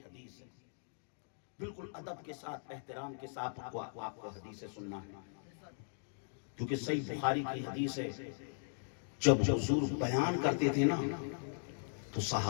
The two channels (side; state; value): right; silent; digital silence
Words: حدیث ہے، بالکل ادب کے ساتھ احترام کے ساتھ آپ کو حدیث سننا ہے، کیونکہ صحیح بخاری کی حدیث ہے۔ جب حضور بیان کرتے تھے نا تو